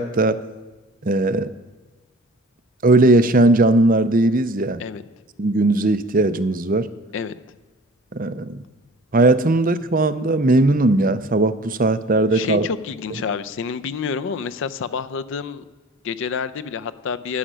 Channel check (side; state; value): both; normal; correlation 0.45